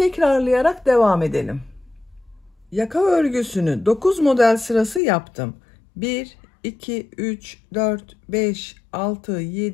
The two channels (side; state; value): right; drops out; at 5.0 s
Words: devam edelim. Yaka örgüsünü 9 model sırası yaptım. 1, 2, 3, 4, 5, 6,